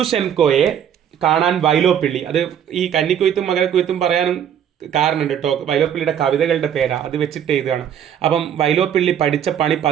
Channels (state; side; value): quieter; left; 9.3 dB